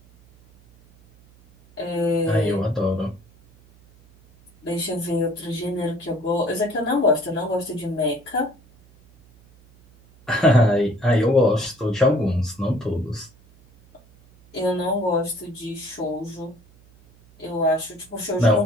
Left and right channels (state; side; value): noise; right; hum, 27 dB below the sound